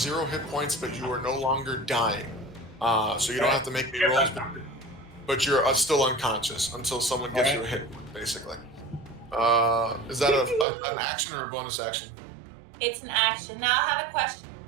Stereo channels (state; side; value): drops out; left; at 10.7 s